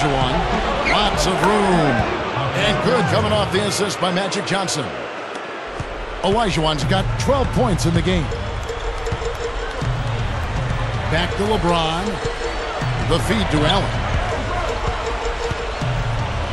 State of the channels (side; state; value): both; identical; correlation 1.00